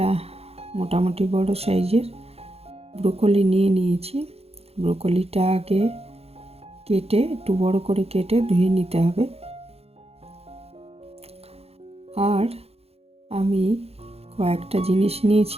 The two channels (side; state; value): left; late; 0.29 ms